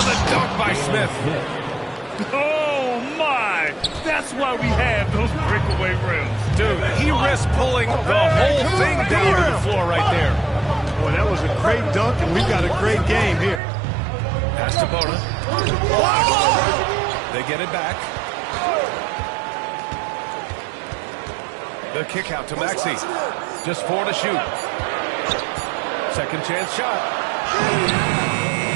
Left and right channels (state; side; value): drops out; left; at 13.6 s